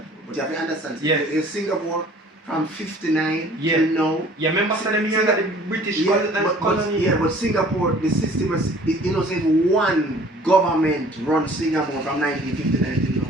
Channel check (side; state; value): both; normal; correlation 0.51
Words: But you have to understand, Yes. in Singapore from 59 Yeah. till now. Yeah, remember them here that the British colony. But Singapore, the system was, you know, say one government run Singapore from